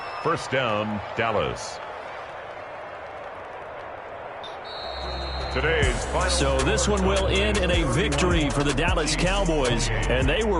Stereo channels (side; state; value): both; identical; correlation 1.00